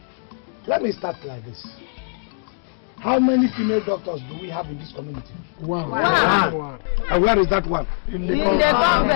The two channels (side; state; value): right; silent; digital silence